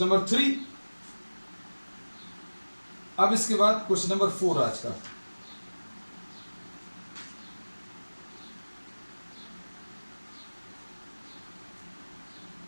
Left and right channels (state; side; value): inverted; both; correlation -1.00